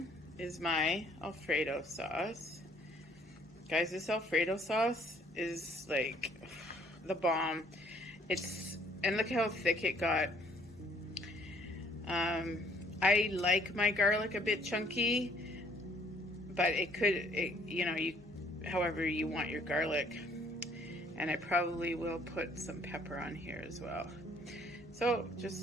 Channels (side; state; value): both; normal; correlation 0.61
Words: is my Alfredo sauce. Guys, this Alfredo sauce is like the bomb. And look how thick it got. I like my garlic a bit chunky, but however you want your garlic. And I probably will put some pepper on here as well. So